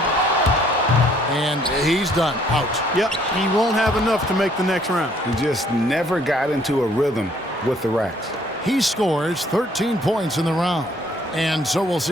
And he's done. Out. Yep, he won't have enough to make the next round. He just never got into a rhythm with the racks. He scores 13 points in the round. And so we'll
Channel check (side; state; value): both; normal; correlation 0.63